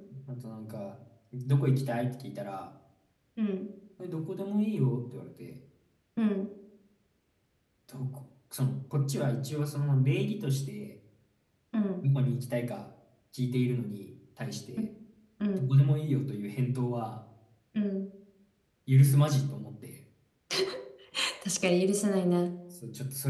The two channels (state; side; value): identical; both; correlation 1.00